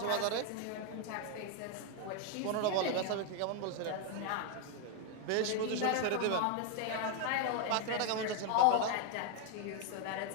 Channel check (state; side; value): different; both; correlation 0.01